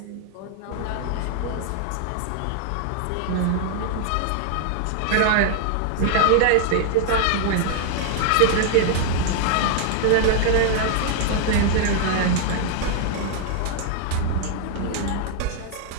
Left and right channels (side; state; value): both; different; correlation -0.01